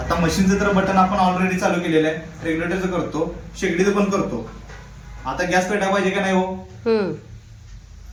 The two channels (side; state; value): both; identical; correlation 1.00